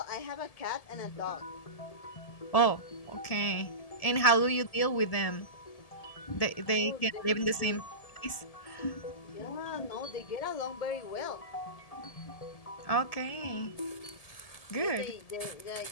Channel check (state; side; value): late; right; 1.7 ms